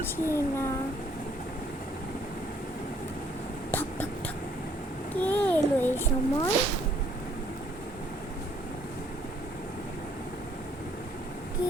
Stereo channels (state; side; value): normal; both; correlation 0.65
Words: না। ঠক ঠক ঠক। কে এলো এই সময়?